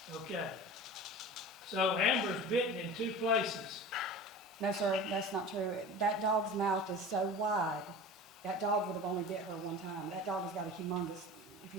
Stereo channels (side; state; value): both; normal; correlation 0.35